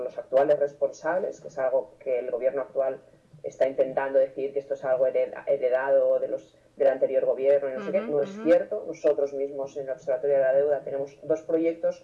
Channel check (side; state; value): both; identical; correlation 1.00